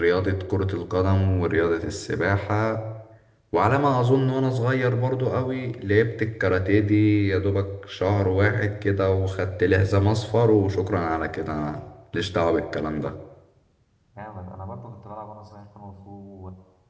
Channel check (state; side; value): identical; both; correlation 1.00